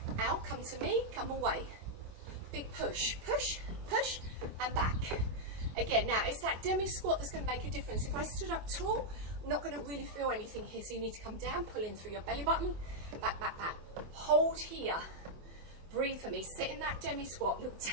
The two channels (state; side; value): late; left; 24 ms